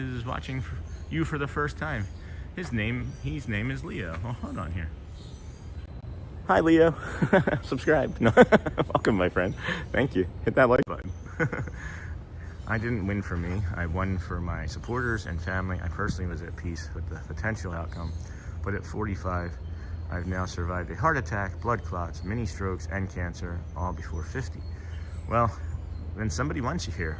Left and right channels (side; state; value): both; identical; correlation 1.00